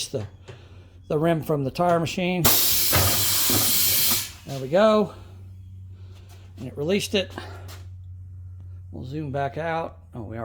the rim from the tire machine. There we go. And it released it. We'll zoom back out. Oh, we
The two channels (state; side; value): identical; both; correlation 1.00